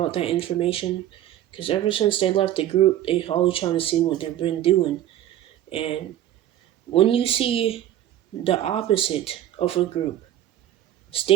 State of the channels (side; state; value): left; quieter; 12.2 dB